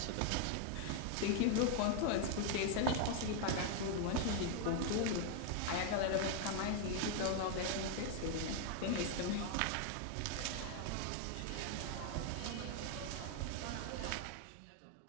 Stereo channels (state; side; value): different; both; correlation 0.00